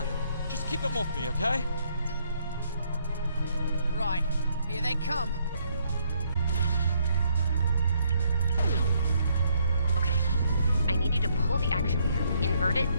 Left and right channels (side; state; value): both; inverted; correlation -0.71